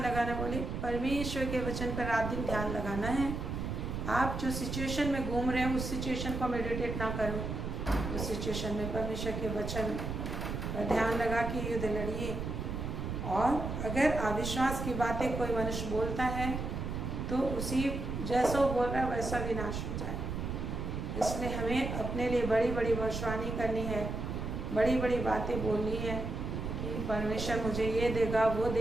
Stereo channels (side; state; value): right; noise; rumble, 4 dB below the sound